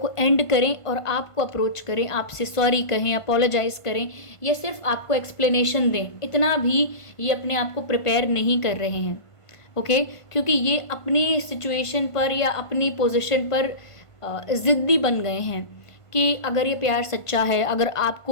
एंड करें और आपको अप्रोच करें, आपसे सॉरी कहें, अपोलोजाइज़ करें, या सिर्फ आपको एक्सप्लेनेशन दें। इतना भी ये अपने आप को प्रिपेयर नहीं कर रहे हैं, ओके, क्योंकि ये अपनी सिचुएशन पर या अपनी पोजीशन पर ज़िद्दी बन गए हैं कि अगर ये प्यार सच्चा है, अगर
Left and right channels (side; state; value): right; late; 1.5 ms